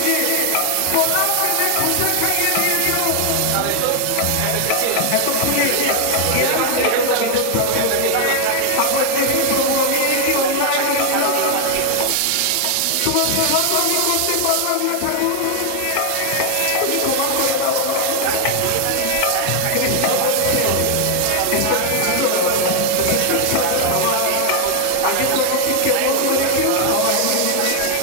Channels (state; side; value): different; both; correlation 0.00